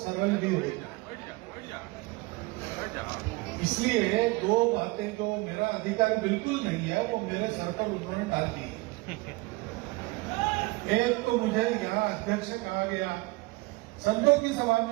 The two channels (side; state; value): left; quieter; 22.8 dB